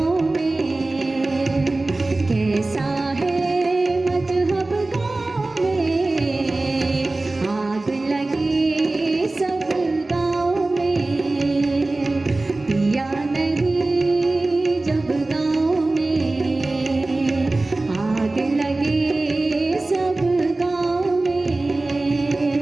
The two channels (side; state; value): left; quieter; 3.0 dB